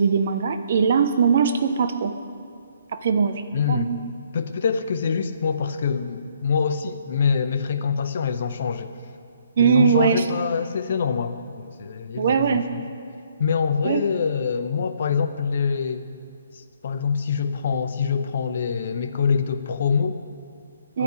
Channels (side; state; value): both; inverted; correlation -0.66